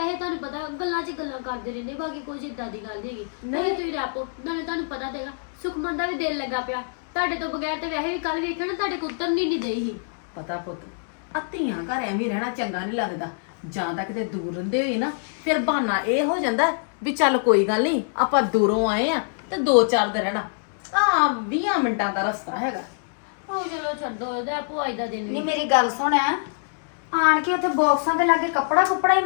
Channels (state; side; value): silent; right; digital silence